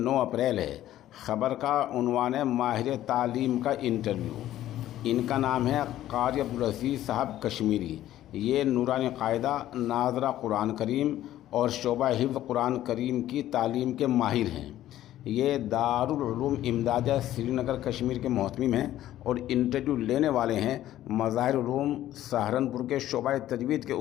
اپریل ہے۔ خبر کا عنوان ہے ماہر تعلیم کا انٹرویو۔ ان کا نام ہے قاری عبدالعزیز صاحب کشمیری۔ یہ نورانی قاعدہ، ناظرہ قرآن کریم اور شعبہ حفظ قرآن کریم کی تعلیم کے ماہر ہیں۔ یہ دارالعلوم امدادیہ سری نگر کشمیر کے محتمم ہیں اور انٹرویو لینے والے ہیں مظاہر علوم سہارنپور کے شعبہ تجوید کے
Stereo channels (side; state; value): right; quieter; 13.3 dB